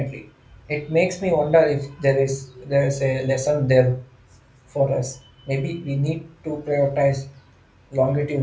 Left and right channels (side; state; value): both; identical; correlation 1.00